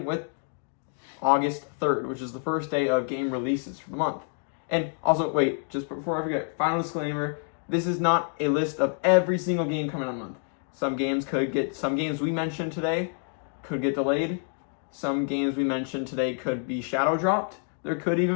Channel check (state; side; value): silent; right; 55 dB below the other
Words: with August 3rd, which is the first day of game releases for the month. And also, wait, just before I forget, final disclaimer, this is not a list of every single game coming out in the month. Some games we mentioned today could get delayed. Some games we mentioned today could be shadow dropped. There could